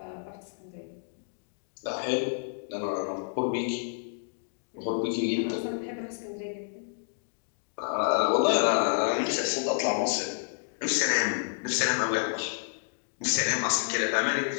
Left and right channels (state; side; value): silent; right; digital silence